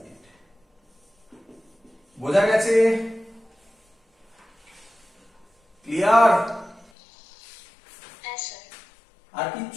বোঝা গেছে? ক্লিয়ার? আর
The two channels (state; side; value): drops out; right; at 6.9 s